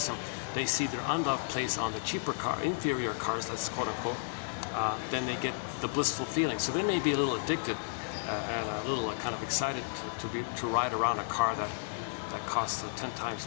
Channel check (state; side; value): silent; right; digital silence